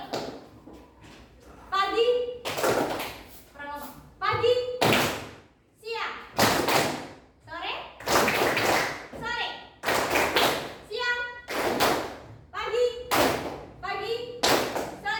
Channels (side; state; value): both; identical; correlation 1.00